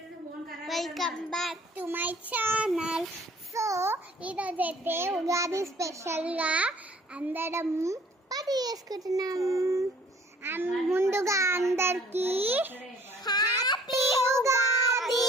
Welcome back to my channel. So ఈరోజు అయితే ఉగాది స్పెషల్గా అందరం పార్టీ చేసుకుంటున్నాం. ముందుగా అందరికి హ్యాపీ ఉగాది.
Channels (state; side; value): normal; both; correlation 0.55